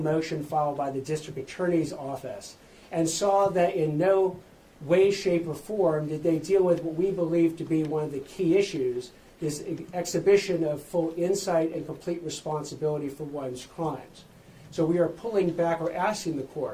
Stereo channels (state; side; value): identical; both; correlation 1.00